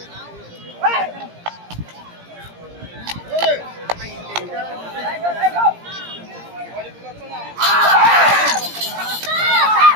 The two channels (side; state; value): left; late; 17 ms